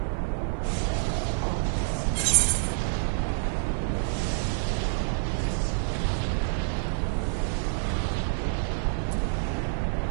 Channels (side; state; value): left; silent; 60 dB below the other